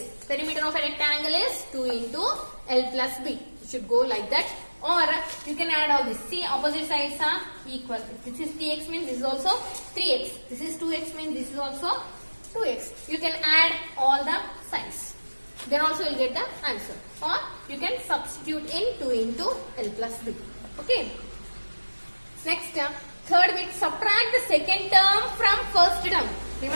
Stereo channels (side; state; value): both; inverted; correlation -1.00